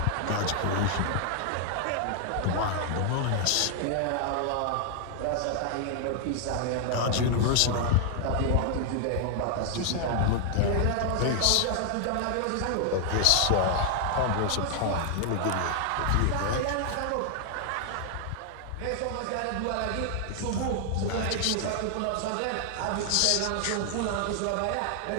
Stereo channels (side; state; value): both; different; correlation 0.00